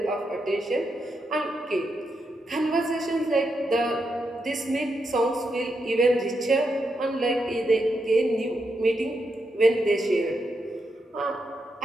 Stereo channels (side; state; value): both; normal; correlation 0.83